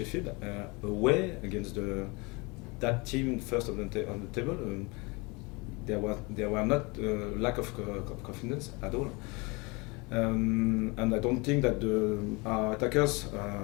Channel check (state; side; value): quieter; right; 27.3 dB